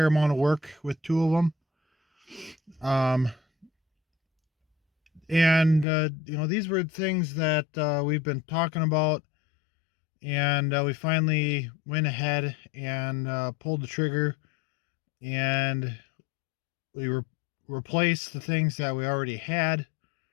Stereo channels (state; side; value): drops out; right; at 5.9 s